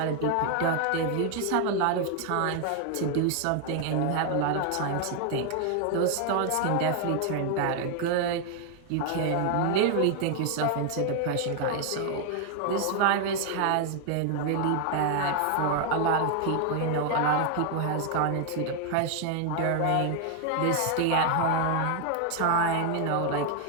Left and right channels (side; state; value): both; different; correlation 0.00